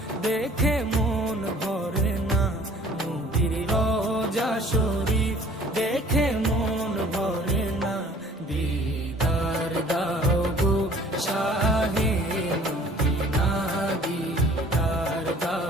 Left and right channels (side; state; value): both; normal; correlation 0.52